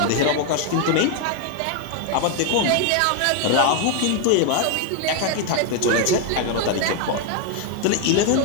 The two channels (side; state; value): both; different; correlation 0.01